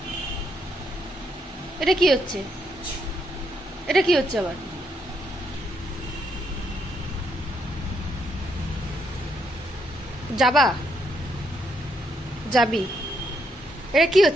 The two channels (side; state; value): both; normal; correlation 0.76